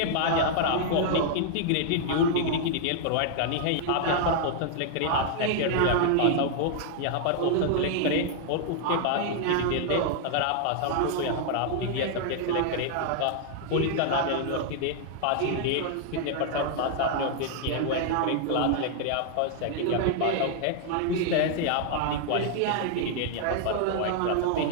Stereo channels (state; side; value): different; both; correlation 0.00